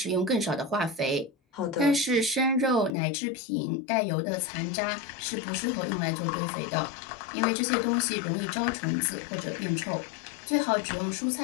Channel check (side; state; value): right; drops out; at 2.9 s